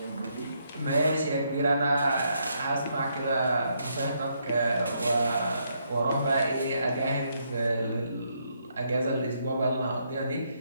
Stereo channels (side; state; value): both; inverted; correlation -0.75